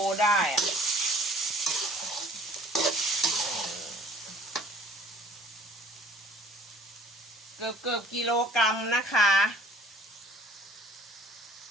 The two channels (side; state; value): both; normal; correlation 0.54